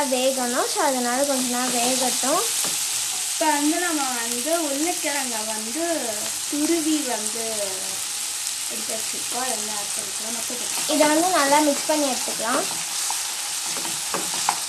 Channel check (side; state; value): both; identical; correlation 1.00